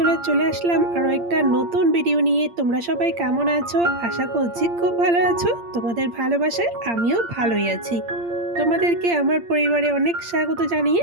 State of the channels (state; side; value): late; left; 8.7 ms